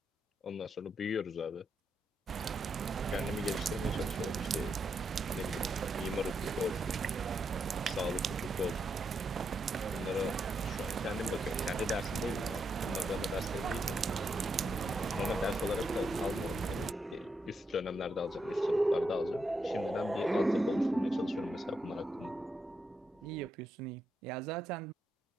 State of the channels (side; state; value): both; normal; correlation 0.82